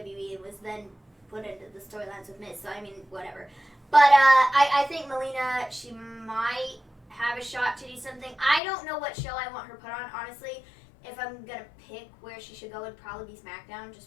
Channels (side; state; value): right; drops out; at 8.6 s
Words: and was then put into the storylines with Miz. So I mean, whatever. But I think Melina, she might have a shot to do something. I don't know what show I want her put on, honestly. If I'm gonna pick where she should go, it'd probably be Smackdown,